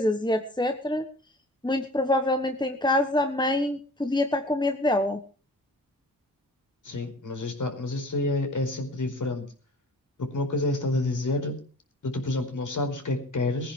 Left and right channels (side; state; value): both; normal; correlation 0.45